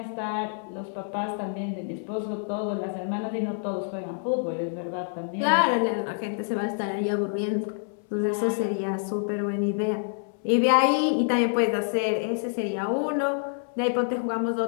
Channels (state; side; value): silent; right; 60 dB below the other